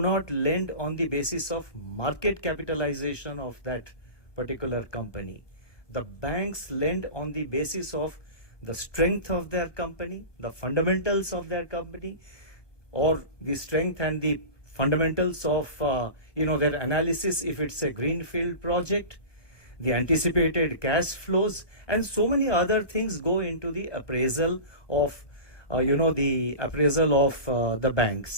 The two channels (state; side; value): late; right; 1.2 ms